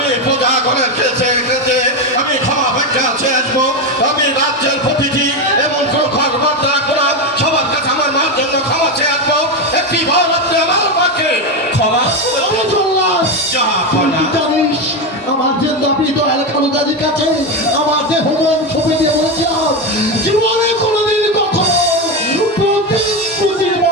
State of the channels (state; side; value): normal; both; correlation 0.13